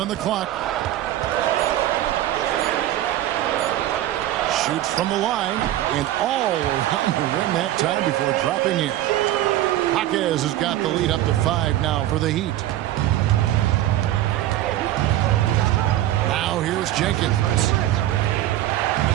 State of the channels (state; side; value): quieter; left; 13.8 dB